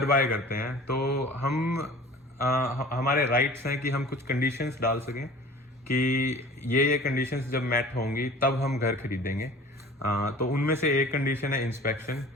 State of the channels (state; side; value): normal; both; correlation 0.44